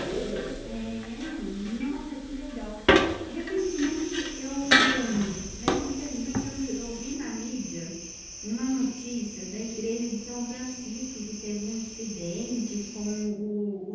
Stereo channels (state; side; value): identical; both; correlation 1.00